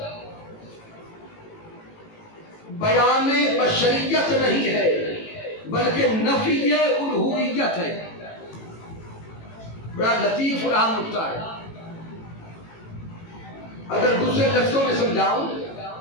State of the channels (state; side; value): late; right; 18 ms